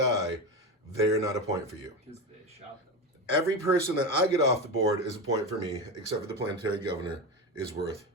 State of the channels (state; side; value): normal; both; correlation 0.19